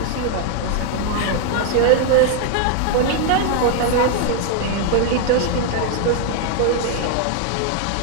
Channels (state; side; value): different; both; correlation 0.00